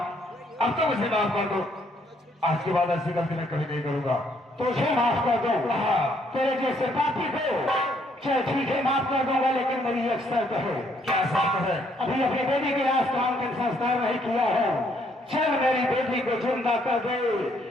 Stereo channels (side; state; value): both; normal; correlation 0.69